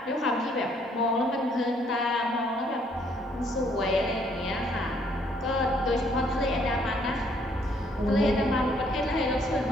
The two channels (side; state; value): both; normal; correlation 0.66